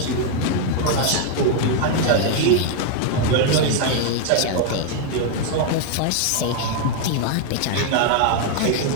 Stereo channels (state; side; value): different; both; correlation 0.00